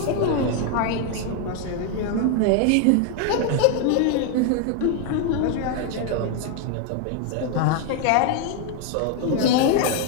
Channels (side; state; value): both; different; correlation 0.00